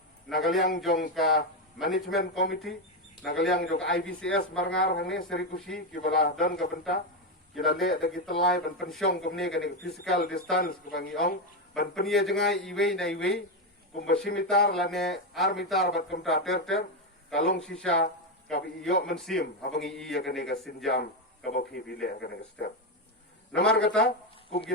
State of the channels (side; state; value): both; normal; correlation 0.08